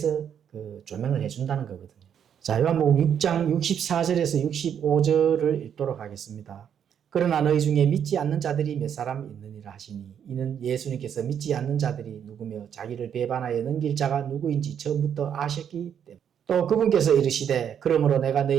그 조명을 해 준다는 거거든요. 자, 요한복음 6장 64절에서 65절을 읽도록 하겠습니다. 그러나 너희 중에 믿지 않는 자들이 몇 사람 있느니라 하시니 이는 예수님께서 믿지 않는 자들이 누구며 자기를 배반하여 넘길 자가 누구인지 처음부터 아셨기 때문에 또 그분께서 이르시되 그러므로 내가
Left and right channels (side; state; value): left; quieter; 8.5 dB